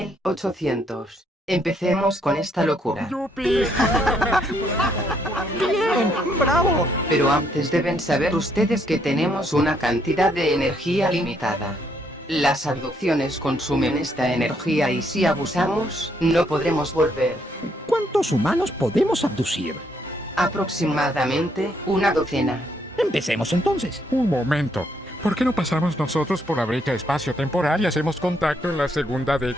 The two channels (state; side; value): normal; both; correlation 0.72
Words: Empecemos con esta locura. ¡Yupi! ¡Bien! ¡Bravo! Pero antes deben saber ustedes que tenemos una cantidad de energía limitada. Las abducciones consumen esta energía y si abusamos, no podremos volver. ¿Cuántos humanos podemos abducir? Aproximadamente una docena. Empecemos entonces. Un momento. ¿Por qué no pasamos nosotros por la brecha espacio-temporal y hacemos contacto en la segunda